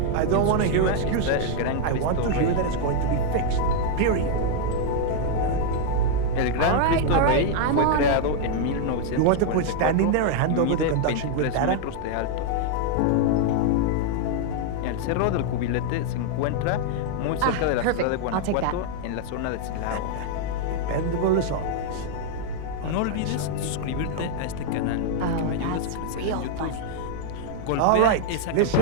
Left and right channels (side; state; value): both; different; correlation 0.00